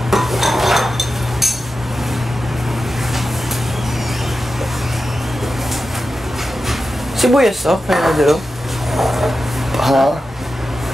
Sibuyas, oh. Kaya na dito. Ha?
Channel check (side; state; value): both; normal; correlation 0.92